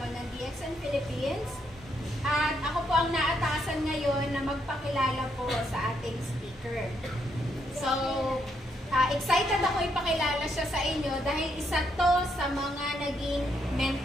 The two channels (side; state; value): both; normal; correlation 0.76